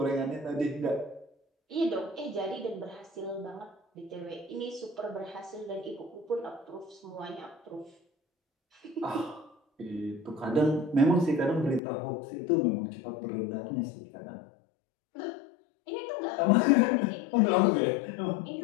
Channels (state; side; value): drops out; right; at 11.8 s